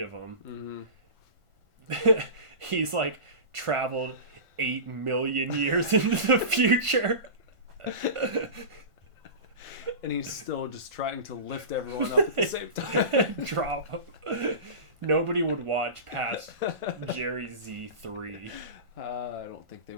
of them. Mm-hmm. He's like traveled 8 million years into the future. And he's still just trying to lift everyone up at the same time. Drop him. Nobody would watch past Jerry Z 3. I don't think they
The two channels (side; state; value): left; late; 1.5 ms